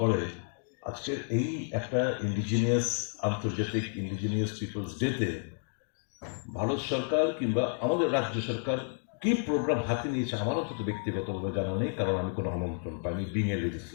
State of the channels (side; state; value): right; silent; 57 dB below the other